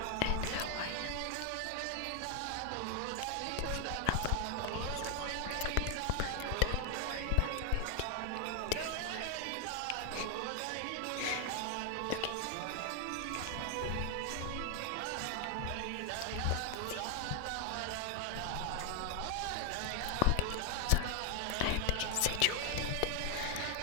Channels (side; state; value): both; different; correlation 0.00